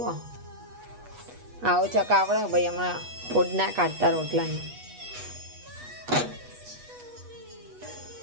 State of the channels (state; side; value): late; left; 8.2 ms